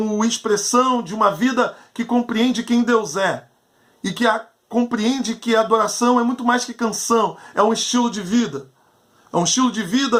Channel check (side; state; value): both; identical; correlation 1.00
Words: expressão de uma vida que compreende quem Deus é e que compreende que a adoração é muito mais que canção, é um estilo de vida. É um estilo de